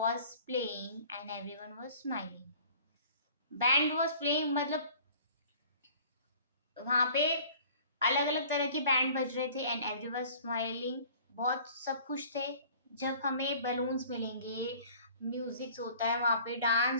playing and everyone was smiling. Band was playing मतलब वहां पे अलग अलग तरह के बैंड बज रहे थे एंड एवरीवन स्माइलिंग। बहुत सब खुश थे। जब हमें बलून्स मिलेंगे, म्यूजिक होता है वहां पे,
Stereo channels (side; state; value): both; inverted; correlation -0.50